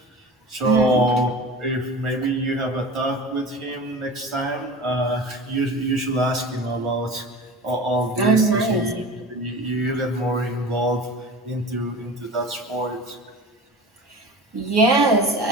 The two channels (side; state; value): both; normal; correlation 0.36